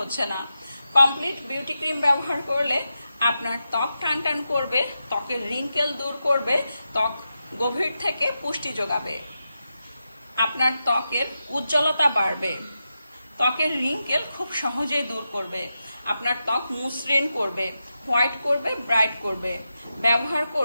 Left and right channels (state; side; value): inverted; both; correlation -0.89